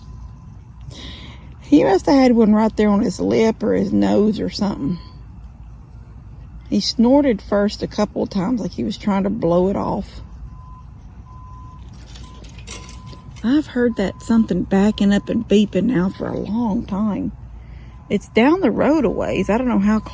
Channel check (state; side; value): identical; both; correlation 1.00